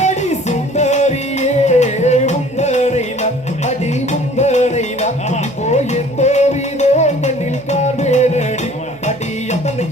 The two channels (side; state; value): right; noise; hum, 23 dB below the sound